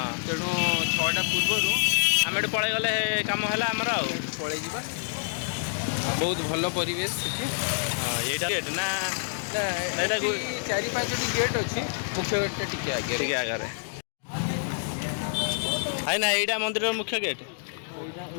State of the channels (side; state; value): right; silent; digital silence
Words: ତେଣୁ 6ଟା ପୂର୍ବରୁ आम एटू पलि गले कम है आमर आउ ପଳେଇ ଯିବା ବହୁତ ଭଲ ପରିବେଶ ସେଠି यहीटा गेट ना ଏଇଟା ଏଠି 4-5ଟି ଗେଟ୍ ଅଛି ମୁଖ୍ୟ ଗେଟ୍ଟା ଟିକେ ଆଗରେ ठीक आगे है ना यहीटा मंदिर मुख्य गेट